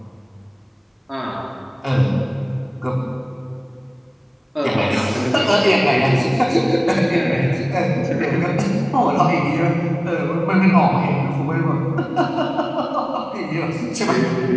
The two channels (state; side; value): identical; both; correlation 1.00